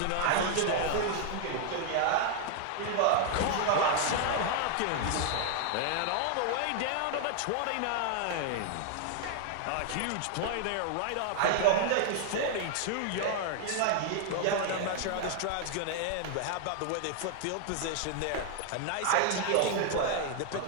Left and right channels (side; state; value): both; different; correlation 0.00